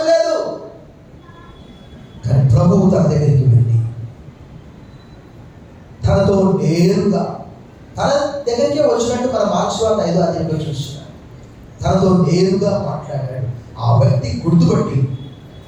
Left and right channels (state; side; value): identical; both; correlation 1.00